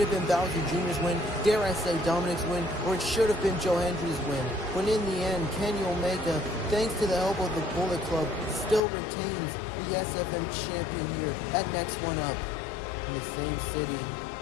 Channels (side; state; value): right; drops out; at 8.8 s